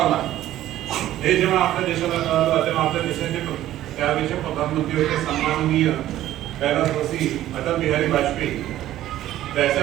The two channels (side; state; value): left; quieter; 13.5 dB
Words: हे जेव्हा आपल्या देशाला कळलं तेव्हा आपल्या देशाचे त्यावेळेचे प्रधानमंत्री होते सन्माननीय कैलासवासी अटल बिहारी वाजपेयी.